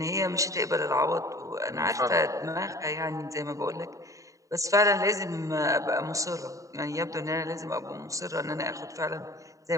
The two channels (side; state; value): left; late; 0.16 ms